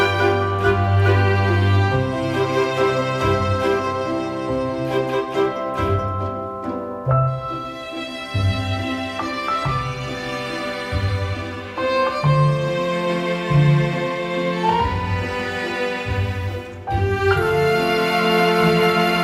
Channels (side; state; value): both; identical; correlation 1.00